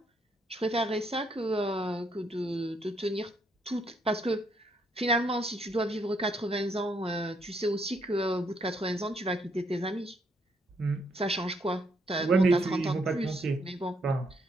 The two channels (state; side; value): normal; both; correlation 0.73